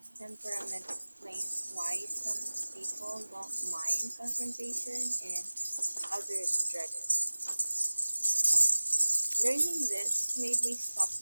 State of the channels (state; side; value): inverted; both; correlation -1.00